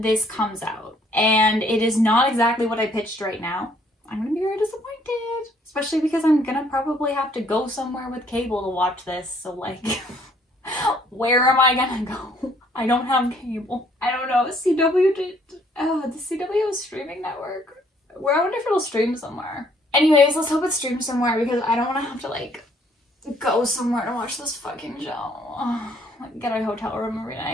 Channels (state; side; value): normal; both; correlation 0.64